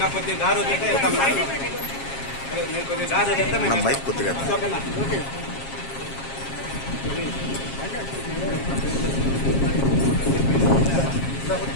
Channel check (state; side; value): late; right; 7.4 ms